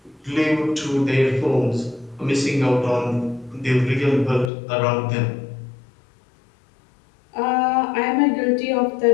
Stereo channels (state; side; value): drops out; right; at 4.5 s